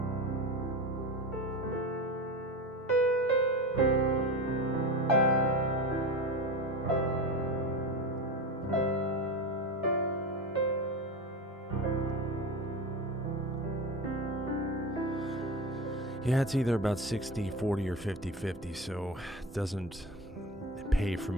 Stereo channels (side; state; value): both; normal; correlation 0.25